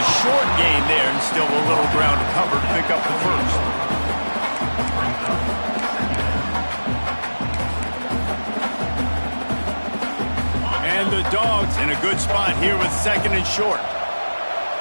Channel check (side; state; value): both; inverted; correlation -1.00